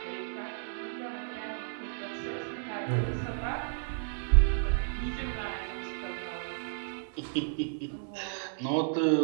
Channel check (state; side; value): silent; left; 56 dB below the other